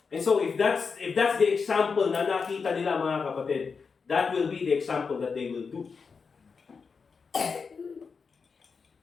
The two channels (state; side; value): quieter; right; 5.3 dB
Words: And so, if that's the example na nakita nila mga kapatid, that will be the example that they will do.